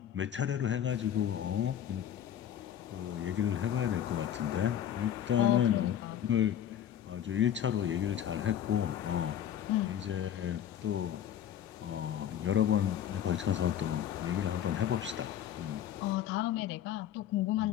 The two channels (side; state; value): right; quieter; 10.2 dB